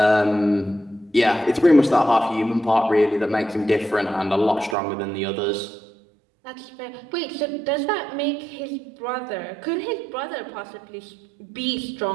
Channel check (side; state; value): left; drops out; at 4.8 s